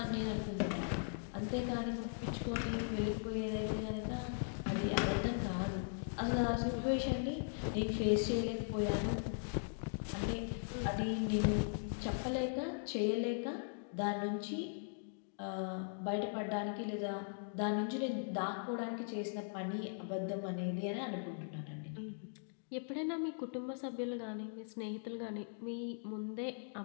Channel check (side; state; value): right; silent; digital silence